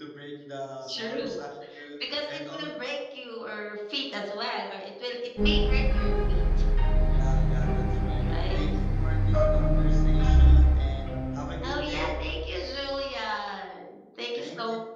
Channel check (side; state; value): both; identical; correlation 1.00